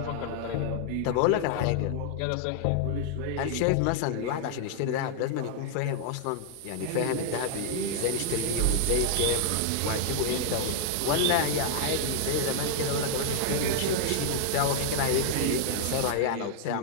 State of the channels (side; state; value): both; different; correlation -0.01